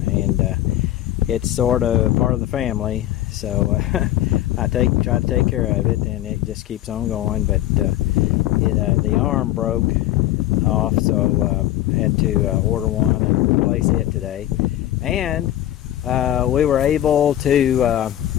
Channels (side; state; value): right; quieter; 13.5 dB